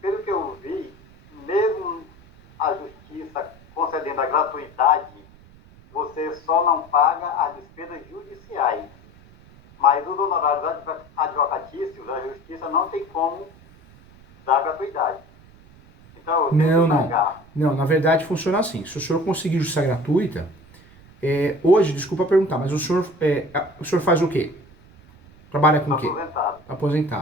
dentro da gratuidade, você só não paga as despesas judiciais. Mas os honorários advocatícios, a justiça não tem como dar gratuidade. Então, eu tenho que pagar. Não, na verdade funciona assim. Se o senhor conseguir justiça gratuita, hoje, desculpa perguntar, mas o senhor faz o quê? Trabalha com o quê? Aposentado.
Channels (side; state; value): right; noise; rumble, 25 dB below the sound